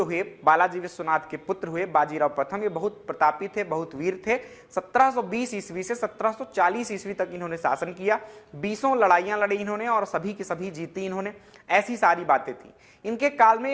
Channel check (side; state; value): both; identical; correlation 1.00